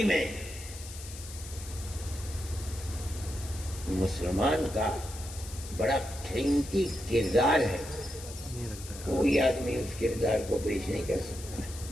میں مسلمان کا بڑا قیمتی کردار ہے، کوئی آدمی اس کردار کو پیش نہیں کر سکتا ہے۔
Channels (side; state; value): left; noise; hiss, 13 dB below the sound